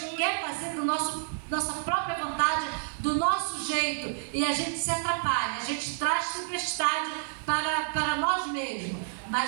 quer fazer do nossa própria vontade, do nosso jeito, e a gente se atrapalha, a gente traz tempestade para nós mesmos.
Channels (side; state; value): left; silent; digital silence